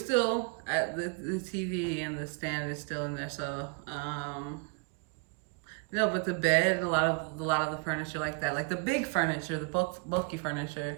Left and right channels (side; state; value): left; quieter; 34.8 dB